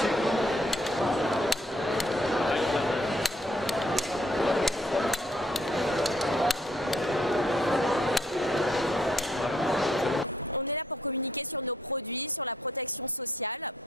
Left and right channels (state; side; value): normal; both; correlation 0.68